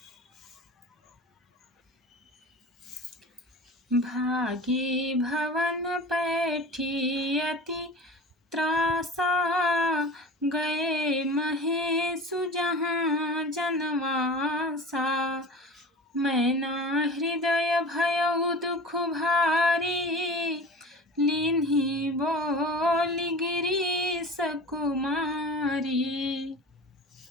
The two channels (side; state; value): both; normal; correlation 0.36